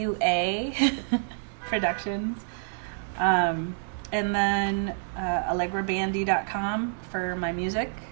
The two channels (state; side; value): silent; left; digital silence